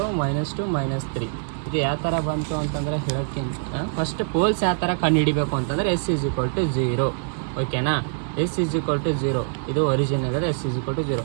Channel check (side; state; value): left; silent; digital silence